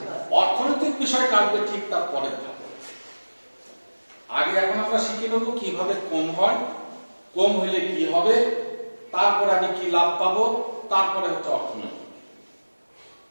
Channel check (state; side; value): inverted; both; correlation -1.00